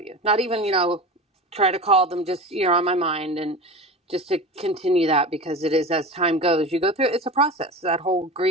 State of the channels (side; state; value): both; normal; correlation 0.30